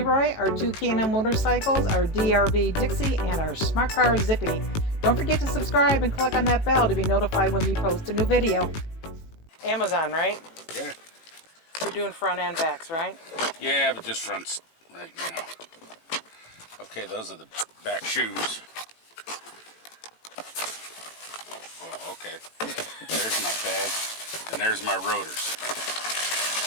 our two K&N motorcycles, our DRV Dixie, and our Smart Car Zippy. Don't forget to subscribe and click on that bell to be notified when we post a new video. Amazon, right? Yeah. You're doing front and backs, right? Yeah, but just fronts right now. Okay, those are the back shoes. Well, okay. There's my pad, and there's my rotors.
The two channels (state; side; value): late; right; 18 ms